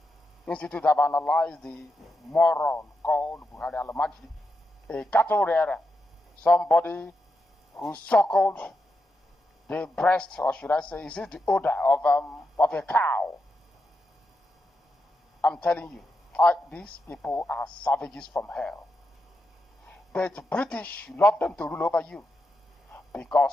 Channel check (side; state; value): both; normal; correlation 0.86